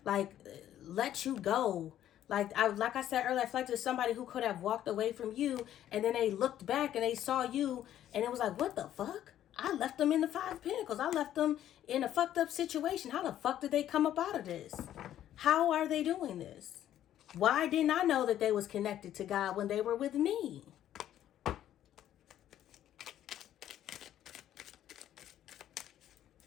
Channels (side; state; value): right; quieter; 11.7 dB